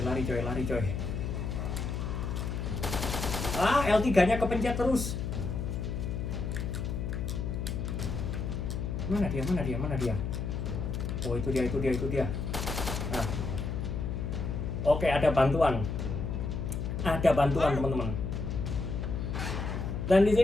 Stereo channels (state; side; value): noise; left; hum, 3 dB below the sound